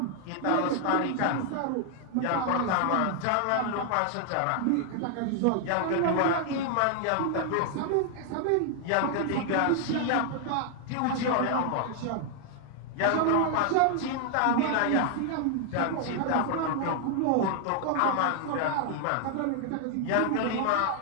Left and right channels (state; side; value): different; both; correlation 0.00